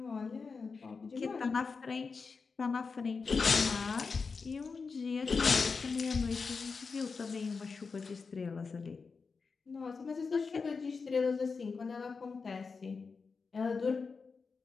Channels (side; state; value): right; quieter; 4.8 dB